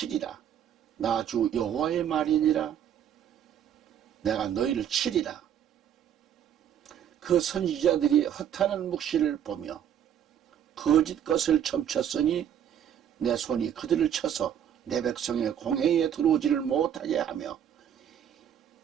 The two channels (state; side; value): quieter; left; 9.5 dB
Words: 나 주 여호와의 말이니라. 내가 너희를 치리라. 그 선지자들이 허탄한 묵시를 보며 거짓 것을 점쳤으니 내 손이 그들을 쳐서 내 백성의 공회에 들어오지를 못하게 하며